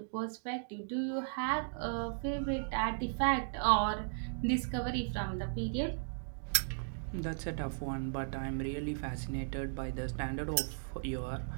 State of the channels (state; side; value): silent; left; digital silence